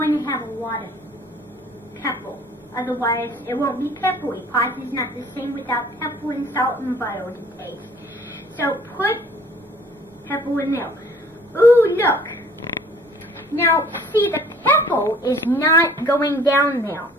to have a lot of pepper. Otherwise, it won't be peppery. Pasta is not the same without pepper and salt and butter to taste. So put pepper in there. Ooh, look. Now, see, the pepper is not going down there.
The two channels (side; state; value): both; normal; correlation 0.54